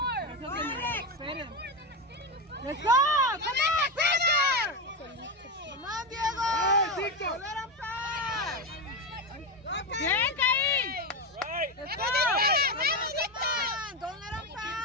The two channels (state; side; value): normal; both; correlation 0.14